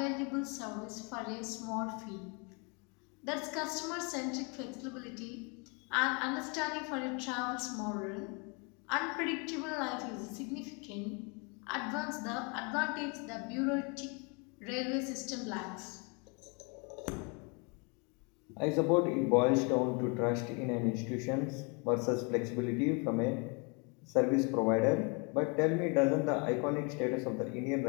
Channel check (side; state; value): right; quieter; 32.8 dB